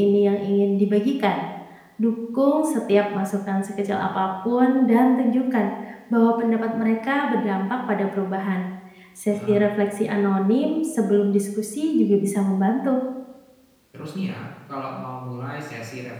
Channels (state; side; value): identical; both; correlation 1.00